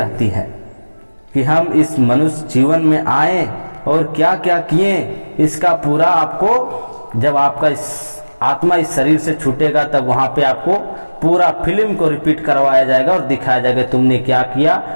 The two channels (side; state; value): both; inverted; correlation -1.00